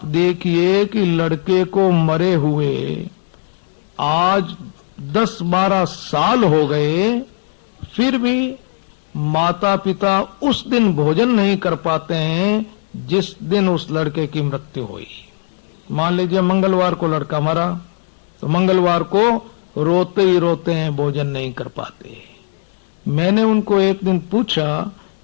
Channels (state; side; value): silent; right; digital silence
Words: देखिए कि लड़के को मरे हुए आज 10-12 साल हो गए, फिर भी माता पिता उस दिन भोजन नहीं कर पाते हैं जिस दिन उस लड़के की मृत्यु हुई। मान लीजिए मंगलवार को लड़का मरा, तो मंगलवार को रोते ही रोते हैं, भोजन नहीं कर पाते। मैंने उनको एक दिन पूछा